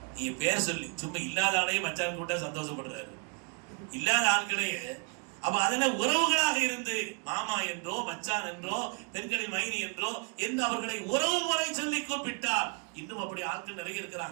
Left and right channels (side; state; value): left; quieter; 36.8 dB